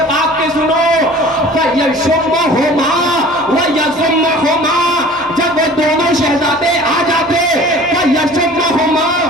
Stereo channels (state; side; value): normal; both; correlation 0.45